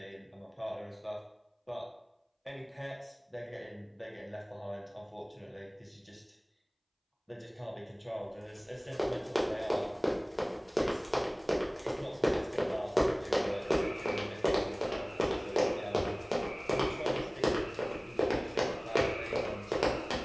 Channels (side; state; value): both; identical; correlation 1.00